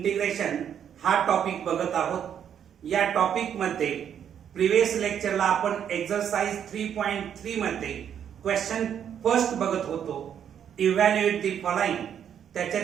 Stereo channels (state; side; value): quieter; left; 8.9 dB